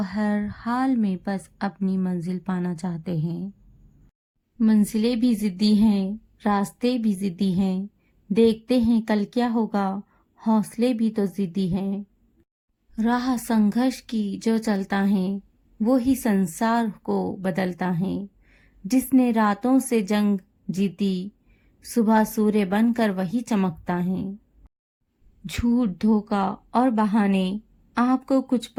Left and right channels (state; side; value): identical; both; correlation 1.00